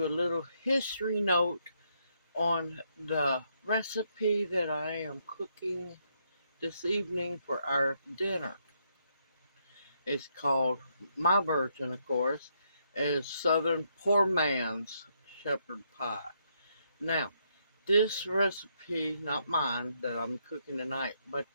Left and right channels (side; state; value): both; inverted; correlation -0.76